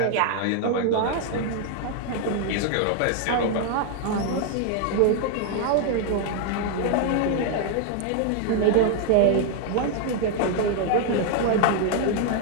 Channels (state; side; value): different; both; correlation 0.00